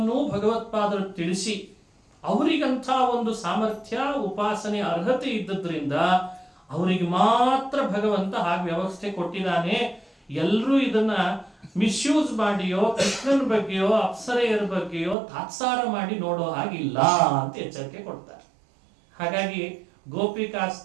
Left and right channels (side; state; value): left; drops out; at 15.2 s